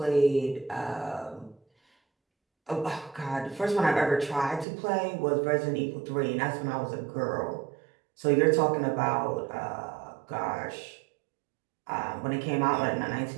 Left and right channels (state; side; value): drops out; left; at 4.7 s